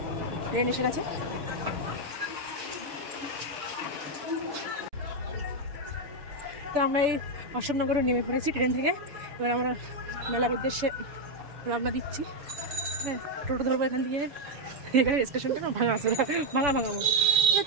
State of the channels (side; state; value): left; late; 7.1 ms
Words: ট্রেন এসে গেছে। তো আমরা এই অশোকনগরে নেমে পড়েছি ট্রেন থেকে। এবার আমরা মেলার উদ্দেশ্যে রওনা দিচ্ছি। হ্যাঁ, টোটো ধরবো এখান থেকে। এখানে স্টেশনটা না ভাঙা আছে, ভাঙা মতো।